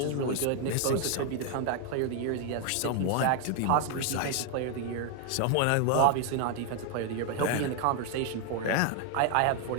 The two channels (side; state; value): both; different; correlation 0.01